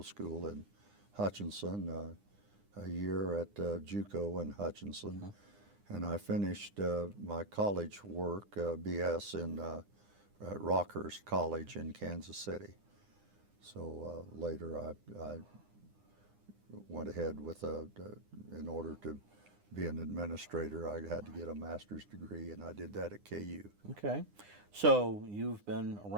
school in Hutchinson, a year at JUCO in Hutchinson. And I finished my college work, BS, in at Rockhurst College in Kansas City. So later I went ahead with in order to be an administrator, I had to get a master's degree, and I did that at KU. Okay. So you've been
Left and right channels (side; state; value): left; late; 9.8 ms